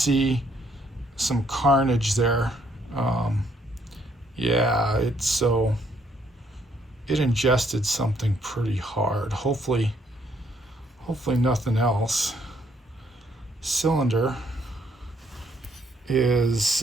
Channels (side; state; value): both; normal; correlation 0.68